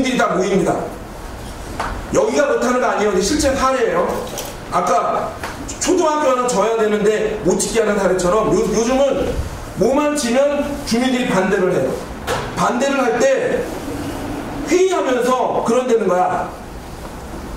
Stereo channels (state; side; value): identical; both; correlation 1.00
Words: 다 모입니다. 여기가 그렇다는 거 아니에요. 실제 사례예요. 아까 초등학교 하나 져야 되는데 못 짓게 하는 사례처럼 요즘은 뭐만 지면 주민들이 반대를 해요. 반대를 할 때 회의하면서 그런 데는 거야.